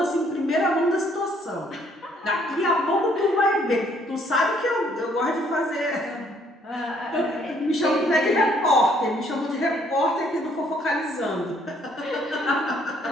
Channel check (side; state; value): both; normal; correlation 0.65